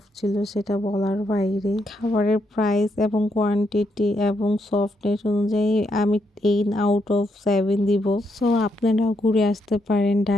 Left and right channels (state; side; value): normal; both; correlation 0.78